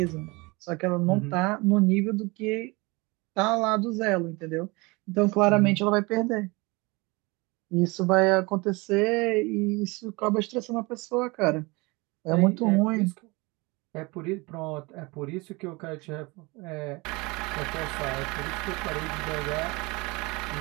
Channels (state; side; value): quieter; left; 25.5 dB